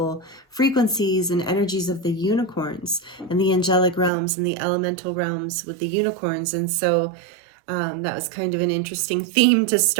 frequencies and energies of the unicorns and the angelic realms and the elemental realms with the unicorns. And so that was kind of an interesting theme to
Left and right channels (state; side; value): drops out; left; at 4.1 s